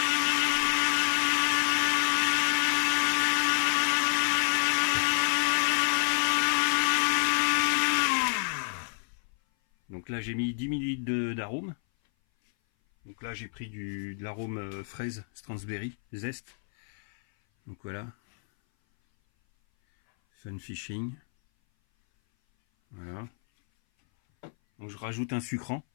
Donc là, j'ai mis 10 ml d'arôme. Donc là j'ai pris de l'arôme fraise Stransberry zeste. Donc voilà. Fun Fishing. Voilà. Donc je rajoute un sucrant.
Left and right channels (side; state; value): right; silent; 57 dB below the other